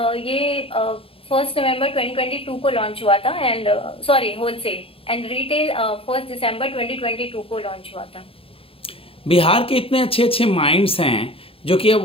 ये 1 नवंबर 2022 को लॉन्च हुआ था, and sorry wholesale, and retail 1 दिसंबर 2022 को लॉन्च हुआ था। बिहार के इतने अच्छे अच्छे माइंड्स हैं जो कि अब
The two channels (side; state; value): right; late; 0.27 ms